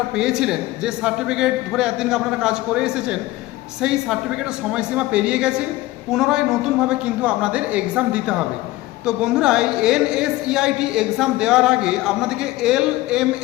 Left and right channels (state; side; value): quieter; right; 17.9 dB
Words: পেয়েছিলেন, যে সার্টিফিকেট ধরে এতদিন আপনারা কাজ করে এসেছেন, সেই সার্টিফিকেটের সময়সীমা পেরিয়ে গেছে। পুনরায় নতুনভাবে কিন্তু আপনাদের এক্সাম দিতে হবে। তো বন্ধুরা, এই NSEIT এক্সাম দেওয়ার আগে আপনাদেরকে